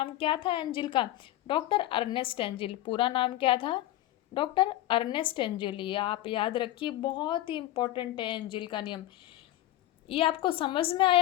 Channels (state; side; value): quieter; right; 14.9 dB